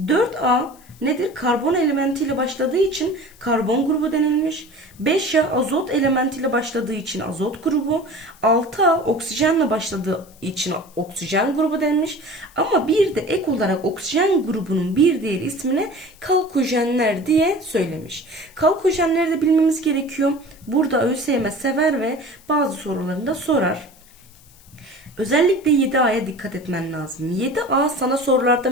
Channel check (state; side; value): noise; left; hiss, 26 dB below the sound